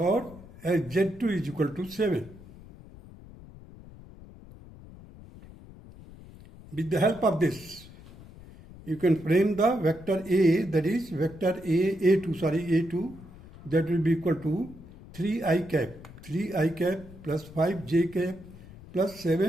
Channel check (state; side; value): noise; left; rumble, 19 dB below the sound